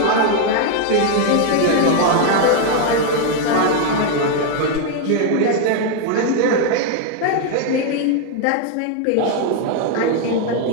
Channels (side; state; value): both; different; correlation 0.00